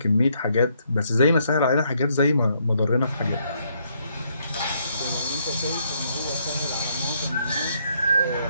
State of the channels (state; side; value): inverted; both; correlation -0.72